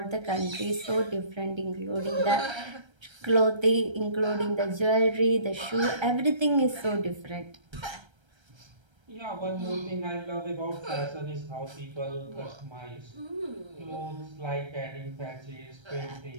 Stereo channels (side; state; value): left; late; 1.3 ms